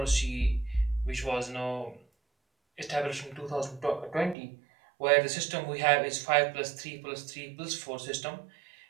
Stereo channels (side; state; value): left; drops out; at 4.4 s